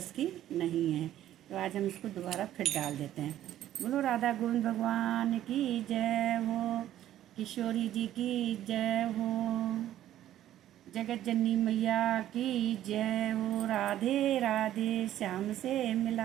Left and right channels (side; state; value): left; quieter; 12.5 dB